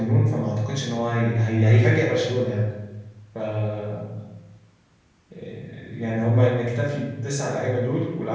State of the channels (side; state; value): both; identical; correlation 1.00